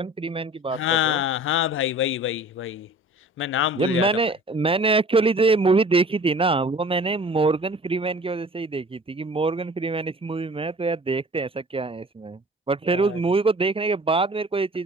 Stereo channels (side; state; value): both; normal; correlation 0.46